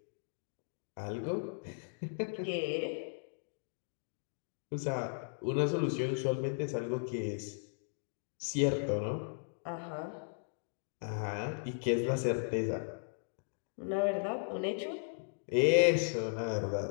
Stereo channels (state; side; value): silent; right; digital silence